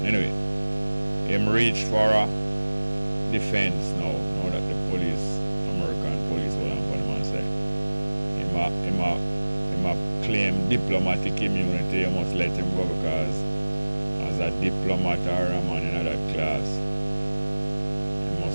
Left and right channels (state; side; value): inverted; both; correlation -1.00